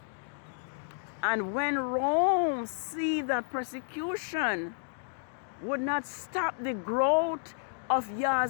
And when Rome see that persecution would not stop the growth of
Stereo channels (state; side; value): silent; right; digital silence